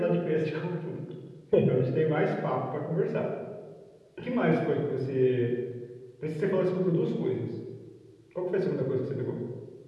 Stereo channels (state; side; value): identical; both; correlation 1.00